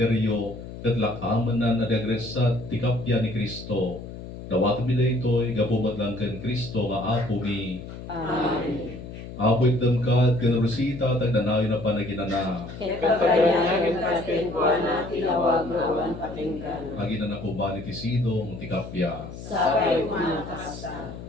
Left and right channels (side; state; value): left; noise; hum, 12 dB below the sound